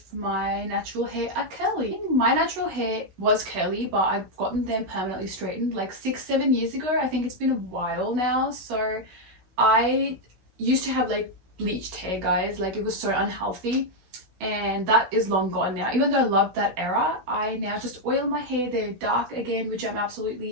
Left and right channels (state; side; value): late; left; 16 ms